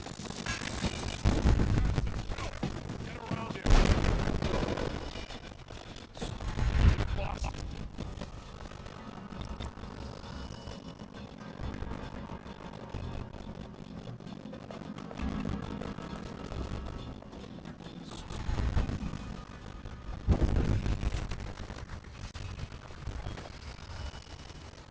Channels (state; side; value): identical; both; correlation 1.00